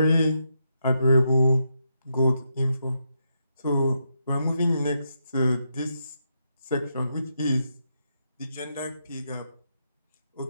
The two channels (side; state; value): both; inverted; correlation -0.82